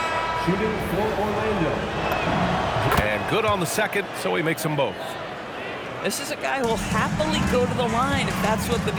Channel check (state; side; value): identical; both; correlation 1.00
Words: Shooting for Orlando. And good on the second, so he makes them both. This is a guy who will happily go to the line if that's what the